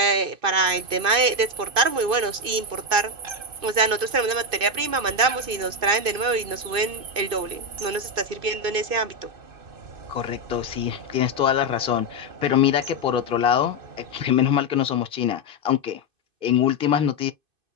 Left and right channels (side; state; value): left; late; 2.5 ms